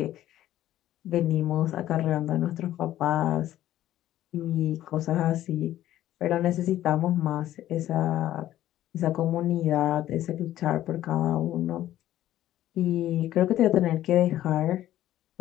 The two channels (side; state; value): right; quieter; 13.3 dB